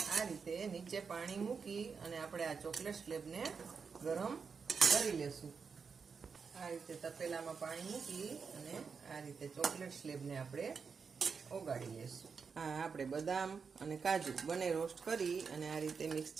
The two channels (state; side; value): quieter; left; 5.6 dB